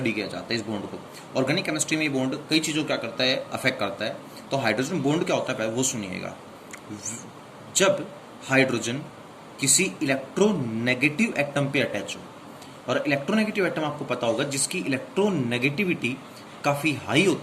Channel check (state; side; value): identical; both; correlation 1.00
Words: किया जाता है इस बॉन्ड को। ऑर्गेनिक केमिस्ट्री में ये बॉन्ड कई चीज़ों क्या करता है, अफेक्ट करता है। तो हाइड्रोजन बॉन्ड क्या होता है पहले वो सुनिएगा। जब हाइड्रोजन किसी इलेक्ट्रोनेगेटिव एटम पे अटैच हो, और इलेक्ट्रोनेगेटिव एटम आपको पता होगा जिसकी इलेक्ट्रोनेगेटिविटी काफ़ी हाई